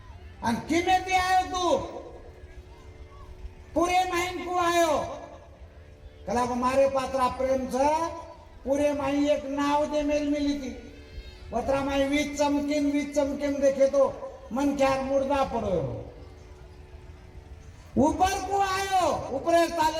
अन किमे थी आयो तू पूरे माइन को आयो कला को मारे पात्रा प्रेम छ पूरे माई एक नाव दे मेल मिली थी पत्रा माई वीज चमकिन देखे तो मन ख्यार मुर्दा पड़ो ऊपर को आयो ऊपर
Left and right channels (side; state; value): both; identical; correlation 1.00